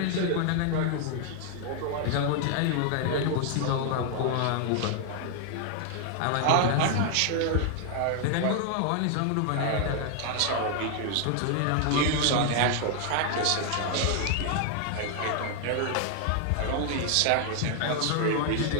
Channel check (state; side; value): different; both; correlation 0.00